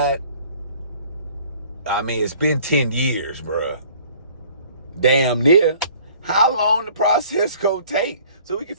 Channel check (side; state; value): both; inverted; correlation -0.53